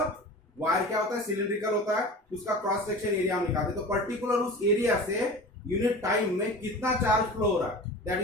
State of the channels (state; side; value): normal; both; correlation 0.35